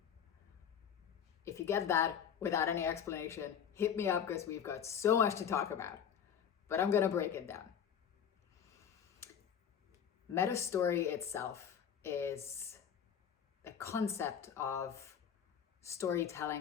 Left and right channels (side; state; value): right; quieter; 8.4 dB